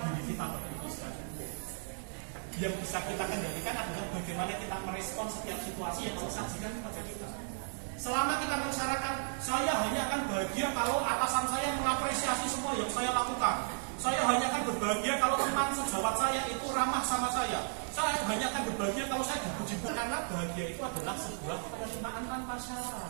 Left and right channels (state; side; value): silent; left; 55 dB below the other